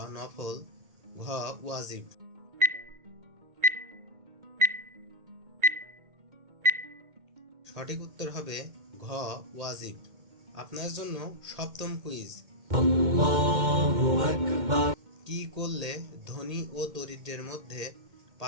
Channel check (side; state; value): left; late; 2.1 ms